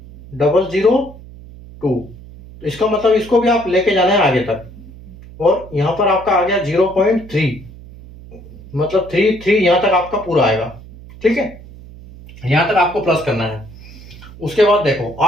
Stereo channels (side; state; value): right; noise; hum, 18 dB below the sound